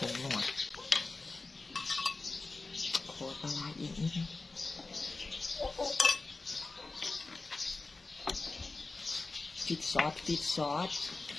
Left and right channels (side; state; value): right; quieter; 3.6 dB